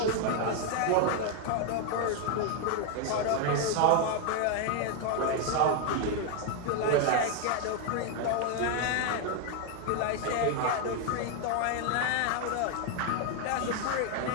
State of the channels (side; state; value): both; different; correlation 0.01